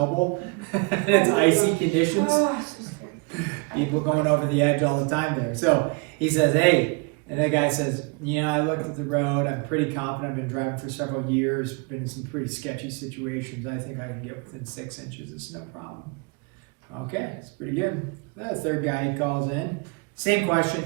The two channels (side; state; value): left; quieter; 31.3 dB